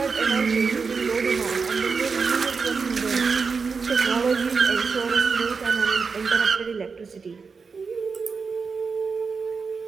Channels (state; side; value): quieter; left; 5.1 dB